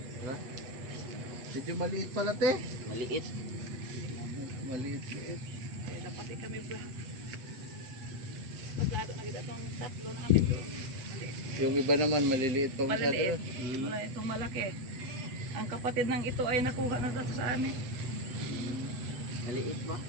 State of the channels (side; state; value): left; late; 8.1 ms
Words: Diba? Medyo maliit pala te. Maliit. Maliit-liit. Eh, dapat kami ba? Maglado na kita itong tatlo namin doon. Yung iba naman maliliit pa masyado. Maliliit. Wala itong malaki. Ang kapatid ng ito ay nakuha na dito sa amin. Maliit ba?